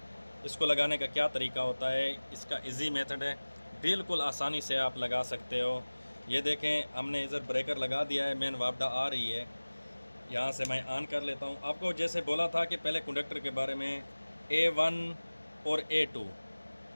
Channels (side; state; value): both; inverted; correlation -1.00